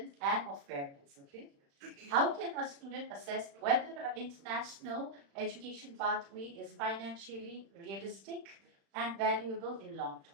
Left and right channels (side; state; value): left; late; 35 ms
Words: and of parents, okay? How can a student assess whether an international education pathway is financially realistic and valuable in long